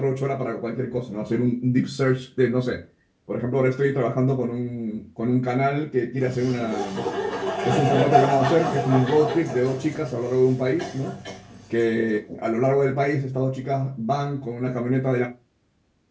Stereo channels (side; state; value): both; identical; correlation 1.00